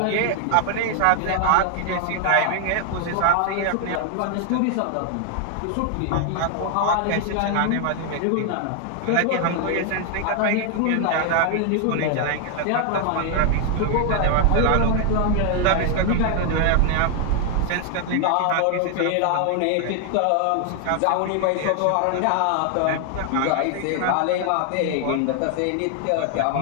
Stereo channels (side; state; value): both; different; correlation 0.00